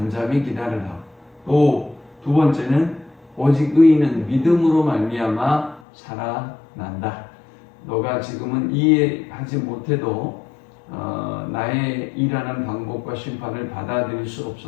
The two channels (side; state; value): right; drops out; at 5.8 s